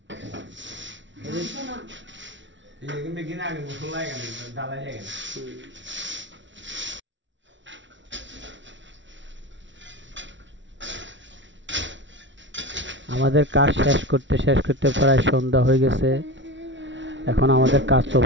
ini begini agak mulai kan dalanya kan আমাদের কাজ শেষ করতে প্রায় সন্ধ্যা হয়ে গেছে এখন আমাদের কাজ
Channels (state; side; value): late; left; 0.55 ms